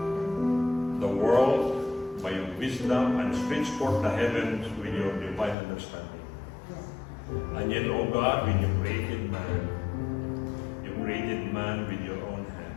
the world by your wisdom and stretch forth the heavens with your divine understanding. And yet, O God, when you created man with your own hand.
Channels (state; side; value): drops out; right; at 5.6 s